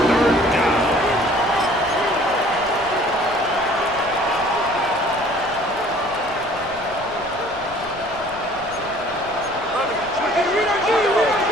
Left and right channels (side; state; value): left; noise; rumble, 20 dB below the sound